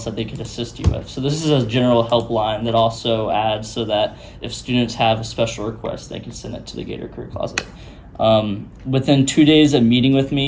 that they could assist you with. So this is a general helpline that also adds so that if students have a special request, they can send it to the Gator Career Closet. Within 2 days of meeting with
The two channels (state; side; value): identical; both; correlation 1.00